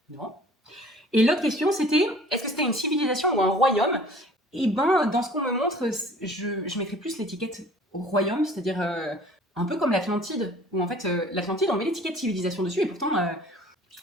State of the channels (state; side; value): normal; both; correlation 0.49